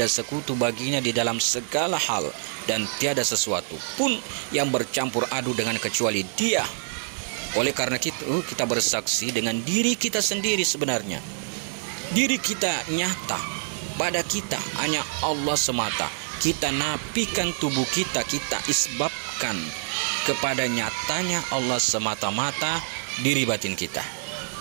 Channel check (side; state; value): left; silent; 59 dB below the other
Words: sekutu baginya di dalam segala hal, dan tiada sesuatu pun yang bercampur aduk dengan kecuali Dia. Oleh karena itu kita bersaksi dengan diri kita sendiri. Sebenarnya diri kita nyata, pada kita hanya Allah semata. Kita nafikan tubuh kita, kita isbabkan kepada nyatanya Allah semata-mata diri batin kita.